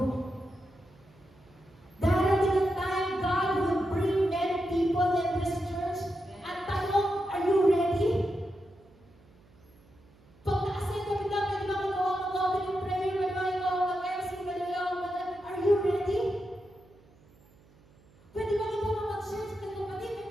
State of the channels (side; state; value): right; noise; hum, 28 dB below the sound